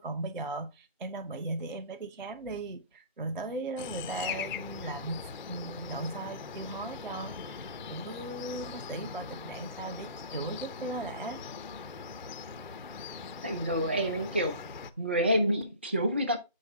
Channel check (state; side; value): inverted; both; correlation -0.40